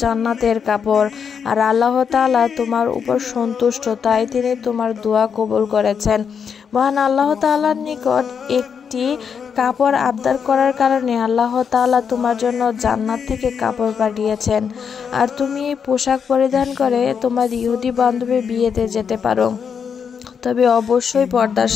জান্নাতের কাপড়। আর আল্লাহ তাআলা তোমার উপর সন্তুষ্ট, তাই তিনি তোমার দোয়া কবুল করেছেন। মহান আল্লাহ তাআলার নিকট একটি কাপড় আবদার করার কারণে আল্লাহ তাআলা তোমার জন্য জান্নাত থেকে কাপড় পাঠিয়েছেন। আর তুমি এই পোশাক পরিধান করে তোমার ইহুদি বান্ধবীর বিয়েতে যেতে পারো, তবে অবশ্যই পর্দার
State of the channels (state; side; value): quieter; right; 6.8 dB